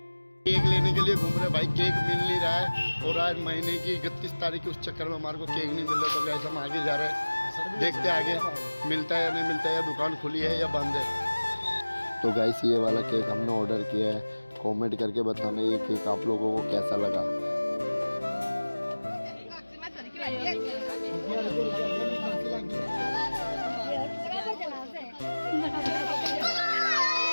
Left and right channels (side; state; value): both; inverted; correlation -1.00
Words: केक लेने के लिए घूम रहे भाई, केक मिल नहीं रहा है और आज महीने की 31 तारीख के उस चक्कर में हमारे को केक नहीं मिल रहा। तो गाइस हम आगे जा रहे हैं, देखते आगे मिलता है या नहीं मिलता है, या दुकान खुली है या बंद है। तो गाइस ये वाला केक हमने ऑर्डर किया है। कमेंट करके बताना ये केक आप लोगों को कैसा लगा।